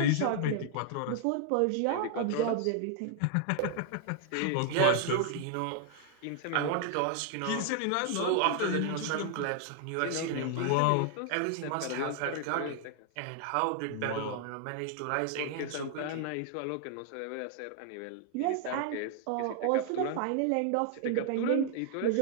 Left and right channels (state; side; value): different; both; correlation 0.00